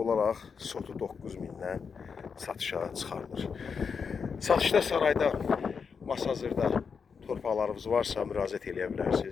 sotu 9 mindən satışa çıxarılır. Satışda Sarayda, Masazırda torpaqlarımız varsa müraciət eləyə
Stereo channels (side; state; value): right; quieter; 5.9 dB